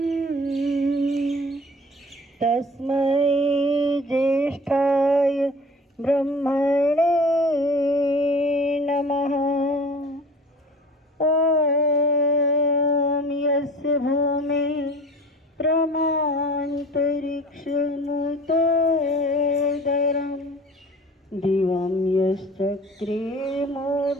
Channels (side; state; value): both; normal; correlation 0.43